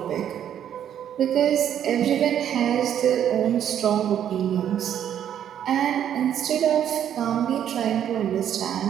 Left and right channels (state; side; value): quieter; left; 9.9 dB